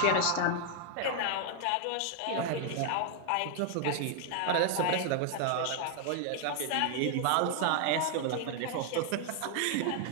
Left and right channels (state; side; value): different; both; correlation 0.00